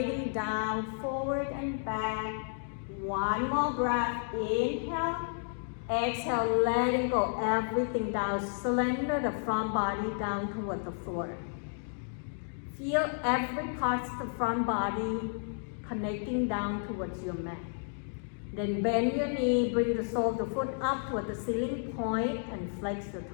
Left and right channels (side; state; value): right; silent; digital silence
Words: down, forward and back. One more breath. Inhale. Exhale, letting go everything down. Slender the front body down toward the floor. Feel every part of the front body connecting down towards your mat. Then bend your knee, bring the sole of the foot up toward the ceiling point and flex the